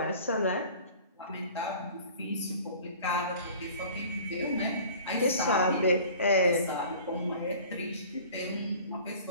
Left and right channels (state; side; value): inverted; both; correlation -0.45